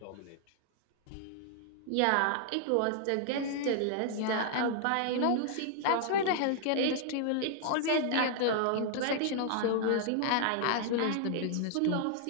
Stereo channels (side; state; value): both; different; correlation -0.01